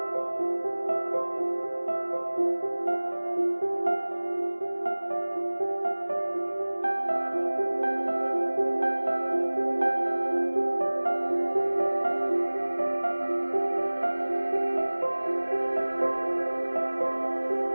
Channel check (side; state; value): both; inverted; correlation -1.00